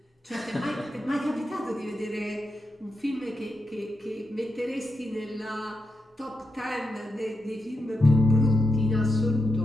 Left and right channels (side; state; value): both; normal; correlation 0.86